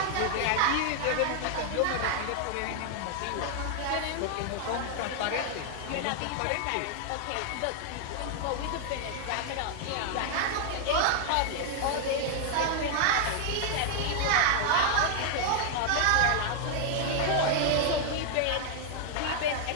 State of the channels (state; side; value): different; both; correlation 0.00